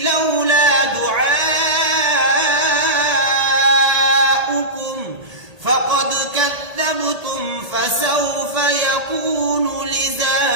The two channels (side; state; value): left; late; 1.8 ms